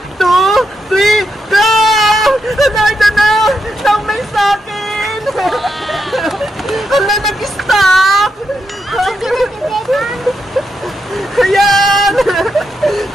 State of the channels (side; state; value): both; normal; correlation 0.83